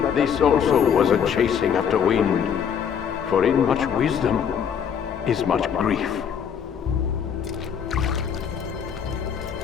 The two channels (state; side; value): quieter; right; 7.7 dB